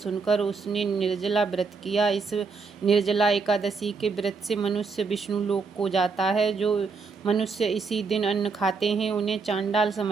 उसने निर्जला व्रत किया। इस निर्जला एकादशी के व्रत से मनुष्य विष्णु लोक को जाता है। जो मनुष्य इसी दिन अन्न खाते हैं उन्हें चांडाल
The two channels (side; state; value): left; quieter; 4.8 dB